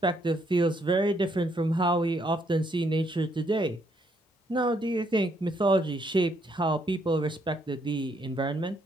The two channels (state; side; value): normal; both; correlation 0.72